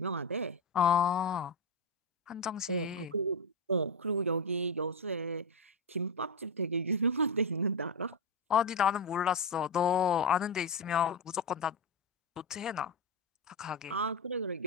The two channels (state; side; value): quieter; right; 3.0 dB